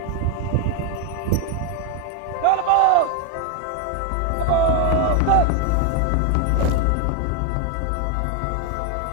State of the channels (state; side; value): different; both; correlation 0.01